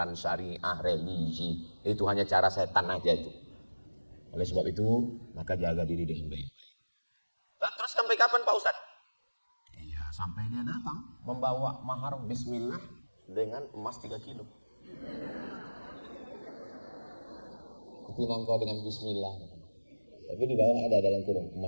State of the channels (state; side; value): inverted; both; correlation -1.00